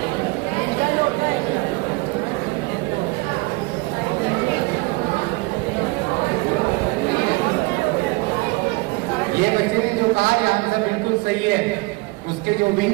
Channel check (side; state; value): left; quieter; 24.7 dB